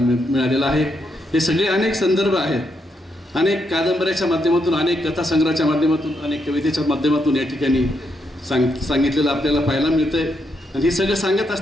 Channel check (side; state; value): both; normal; correlation 0.80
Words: आहे. हे सगळे अनेक संदर्भ आहेत, अनेक कादंबऱ्याच्या माध्यमातून, अनेक कथासंग्रहाच्या माध्यमातून, अनेक कवितेच्या माध्यमातून या ठिकाणी सांगितलेलं आपल्याला पाहायला मिळतं आहे. आणि हे सगळं सांगत